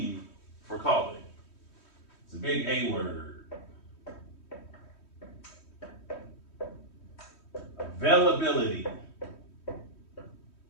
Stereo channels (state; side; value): late; right; 3.1 ms